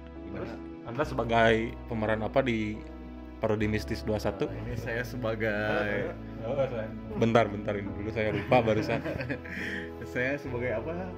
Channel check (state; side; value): identical; both; correlation 1.00